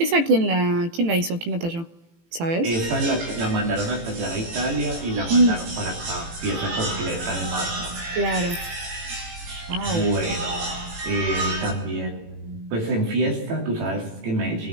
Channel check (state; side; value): late; left; 18 ms